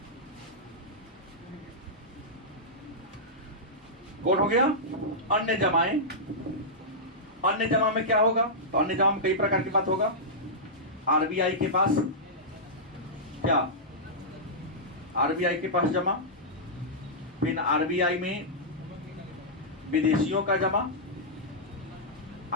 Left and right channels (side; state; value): both; normal; correlation -0.12